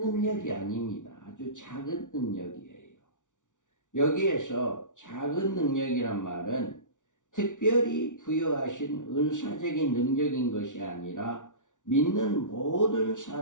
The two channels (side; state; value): right; late; 0.87 ms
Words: 아닙니다. 아주 작은 능력이에요. 여기에서 작은 능력이란 말은 특별히 부여하신 은사적인 능력인 것이 아니라 믿는 모든